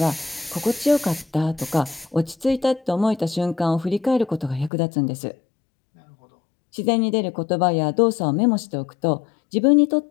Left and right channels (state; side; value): drops out; right; at 4.7 s